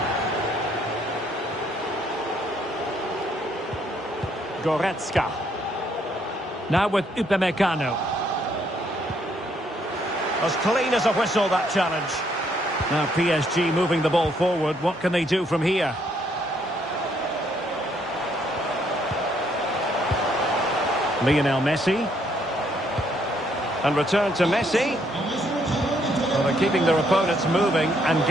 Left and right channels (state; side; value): normal; both; correlation 0.70